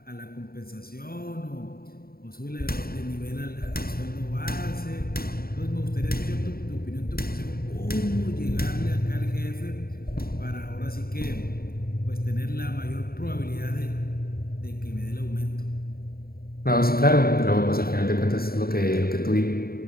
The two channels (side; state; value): right; late; 0.44 ms